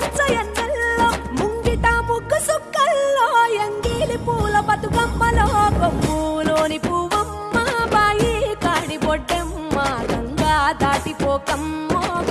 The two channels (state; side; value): identical; both; correlation 1.00